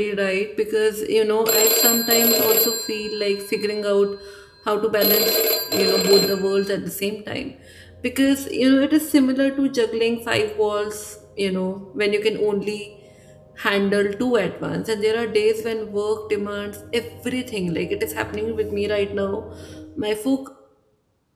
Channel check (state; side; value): identical; both; correlation 1.00